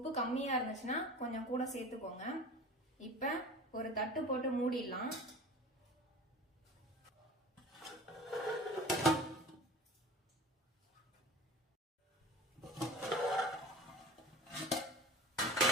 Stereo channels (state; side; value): normal; both; correlation 0.38